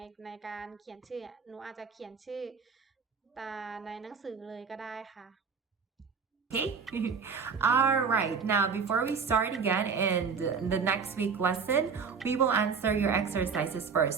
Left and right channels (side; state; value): left; quieter; 5.9 dB